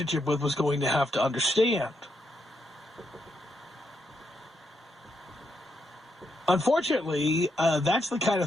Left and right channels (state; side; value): normal; both; correlation 0.80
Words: with was going to have to understand. Unfortunately, that's the kind